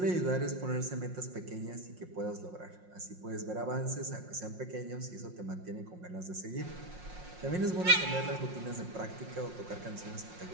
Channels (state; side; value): late; left; 5.6 ms